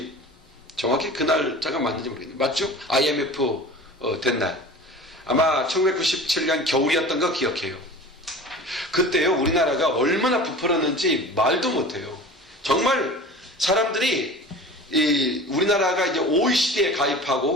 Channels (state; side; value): normal; both; correlation 0.38